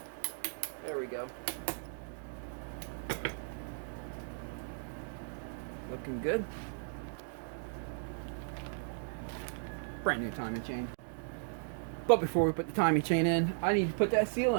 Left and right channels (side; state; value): left; silent; digital silence